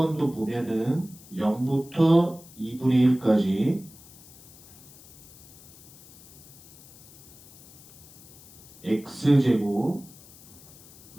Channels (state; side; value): noise; left; hiss, 21 dB below the sound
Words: 보면은 0부터 2분의 1까지 x제곱